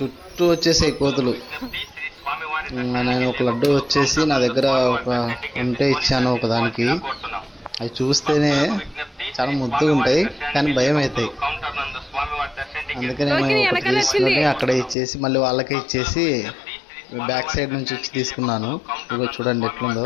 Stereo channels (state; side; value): drops out; right; at 15.0 s